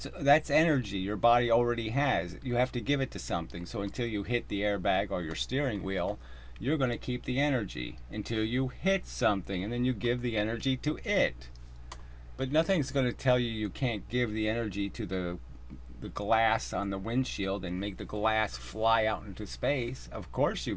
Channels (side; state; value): both; identical; correlation 1.00